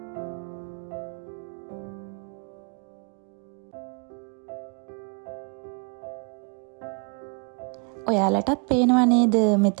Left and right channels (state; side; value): quieter; left; 36.4 dB